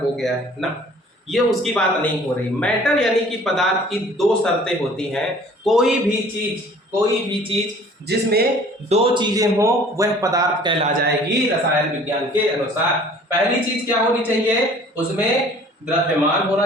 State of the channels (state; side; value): normal; both; correlation 0.51